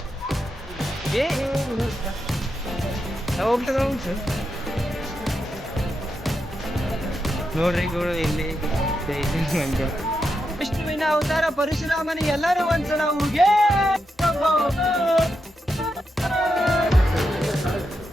ನೋಡ್ರಿ ಗೌಡ, ಇಲ್ಲಿ ವಿಷ್ಣುವಿನ ಅವತಾರ ಪರಶುರಾಮನ ಎಲ್ಲರೂ ಒಂದ್ಸಲ ಹೋಗಿ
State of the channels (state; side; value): normal; both; correlation 0.85